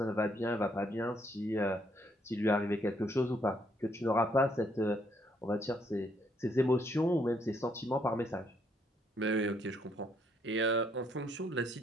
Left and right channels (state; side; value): normal; both; correlation 0.71